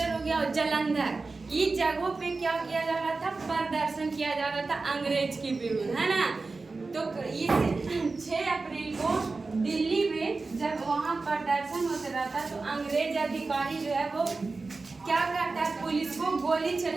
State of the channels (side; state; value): left; quieter; 3.8 dB